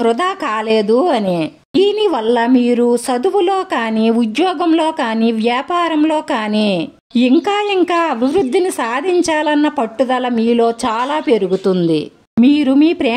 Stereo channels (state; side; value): identical; both; correlation 1.00